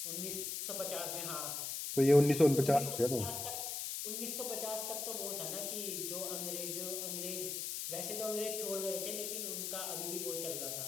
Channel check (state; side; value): noise; left; hiss, 3 dB below the sound